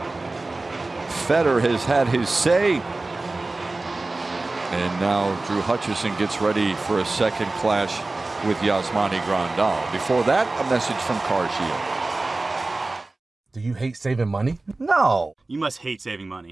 Fetter has had his say. And now Drew Hutchison gets ready for a second clash with Yasmani Grandal. Before that, a message from CarShield. Do you hate saving money? No. You must hate saving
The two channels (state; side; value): quieter; left; 3.2 dB